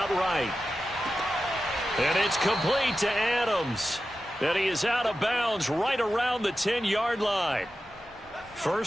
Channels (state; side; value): normal; both; correlation 0.92